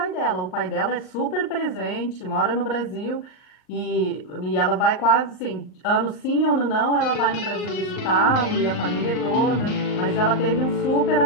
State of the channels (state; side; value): late; right; 38 ms